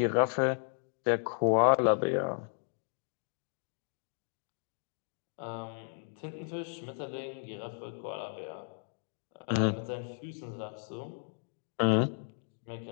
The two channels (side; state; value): right; silent; 55 dB below the other